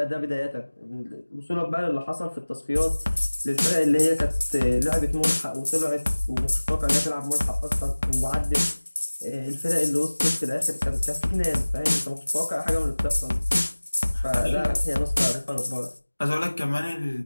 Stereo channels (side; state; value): both; inverted; correlation -1.00